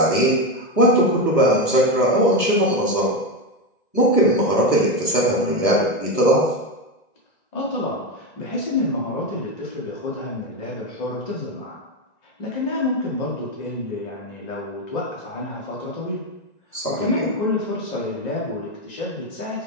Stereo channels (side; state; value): right; late; 1.9 ms